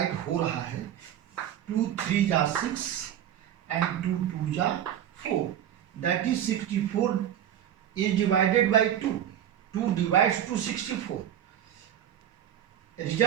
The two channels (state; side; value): quieter; left; 10.5 dB